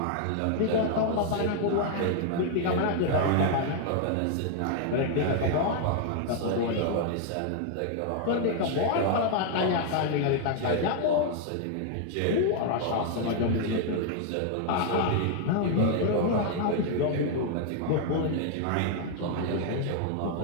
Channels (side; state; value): both; different; correlation 0.00